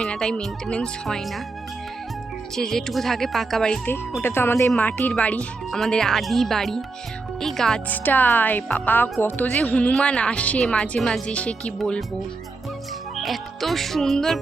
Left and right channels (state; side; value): quieter; left; 3.7 dB